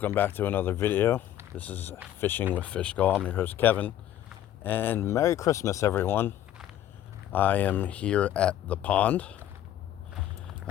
back to another video. This is Fishing with Fishgall. I'm your host Kevin, and Merry Christmas everyone. I am here at the pond.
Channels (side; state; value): right; quieter; 12.1 dB